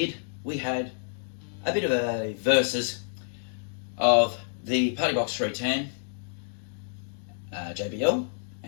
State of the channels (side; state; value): right; silent; digital silence